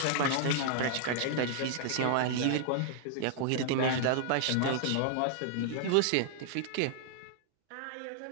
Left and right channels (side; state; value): both; different; correlation -0.01